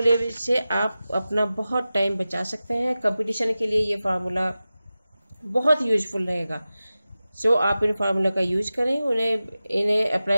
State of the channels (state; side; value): inverted; both; correlation -0.95